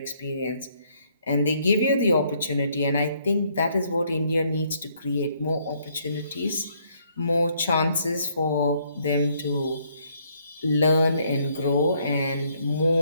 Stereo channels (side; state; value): both; inverted; correlation -0.69